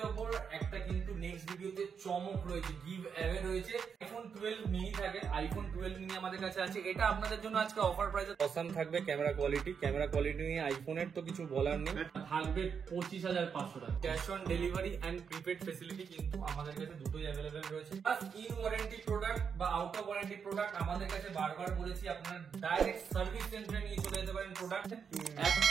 ওপর একটা কিন্তু নেক্সট ভিডিওতে চমক রয়েছে, গিভ অ্যাওয়ে রয়েছে। আইফোন 12 মিনি থাকে, আইফোন 12 মিনি আমাদের কাছে আছে। এটা আপনাদের জন্য আজকে অফার প্রাইসে অসাম থাকবে। ক্যামেরা কোয়ালিটি নিয়ে আইফোনের তো কিছু বলার নেই। থাকবে 25,500 টাকা। Cash on delivery and prepaid facility কিন্তু আমাদের কাছে দুটোই অ্যাভেলেবেল রয়েছে। প্লাস ইন ওয়ারেন্টি প্রোডাক্ট বা আউট অফ ওয়ারেন্টি প্রোডাক্ট আমাদের কাছে বারবার বলেছি, আপনারা ডাইরেক্ট সার্ভিস সেন্টারে নিয়ে চলে যেতে পারেন প্রোডাক্ট।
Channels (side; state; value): left; quieter; 6.6 dB